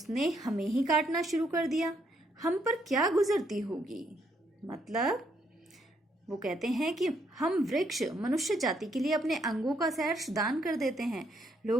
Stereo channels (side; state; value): both; normal; correlation 0.73